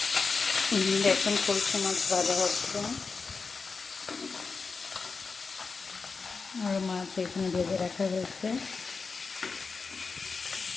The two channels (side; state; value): right; quieter; 4.7 dB